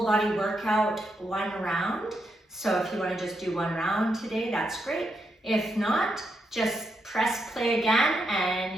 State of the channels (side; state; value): both; normal; correlation 0.82